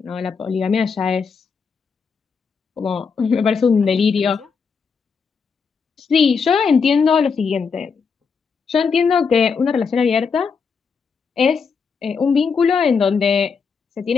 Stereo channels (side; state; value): right; quieter; 5.6 dB